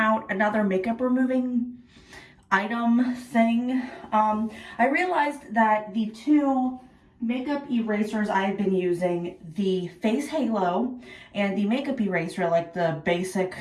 another makeup removing item thing. I realized that the two makeup erasers I've been using, the Face Halo and the makeup eraser, like the basic,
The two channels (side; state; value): both; identical; correlation 1.00